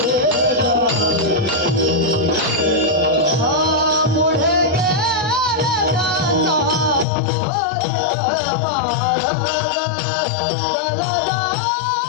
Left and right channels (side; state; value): right; drops out; at 7.1 s